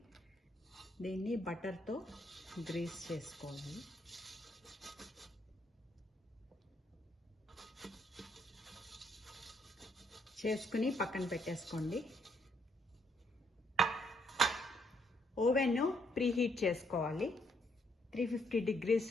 దీన్ని బటర్తో గ్రీస్ చేసుకోవాలి. చేసుకుని పక్కన పెట్టేసుకోండి. ఓవెన్ ప్రీహీట్ చేసుకోవాలి 350 degrees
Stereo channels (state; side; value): normal; both; correlation 0.72